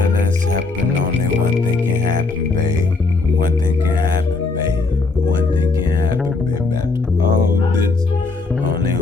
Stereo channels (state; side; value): quieter; right; 3.8 dB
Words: has happened, only one thing can happen, babe. One thing can happen, babe. One thing can happen, babe. After all this, only